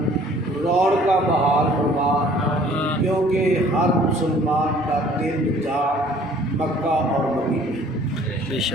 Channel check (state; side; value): normal; both; correlation 0.55